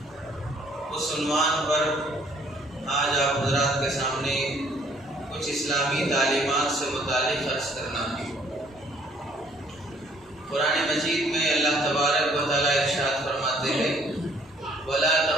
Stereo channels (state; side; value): normal; both; correlation 0.61